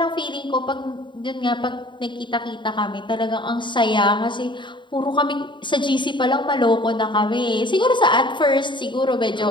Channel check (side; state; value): right; late; 0.23 ms